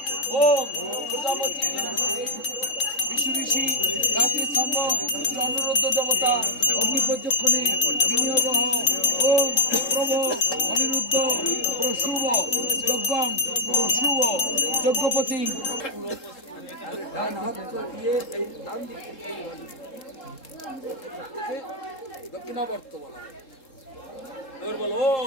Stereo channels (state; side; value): late; right; 3.7 ms